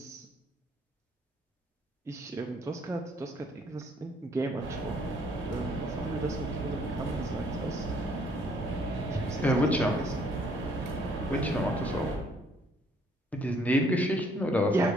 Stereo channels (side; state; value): both; normal; correlation 0.64